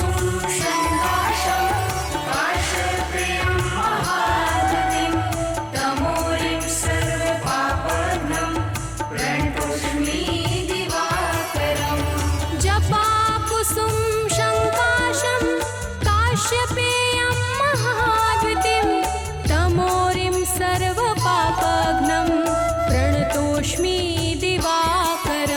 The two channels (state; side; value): identical; both; correlation 1.00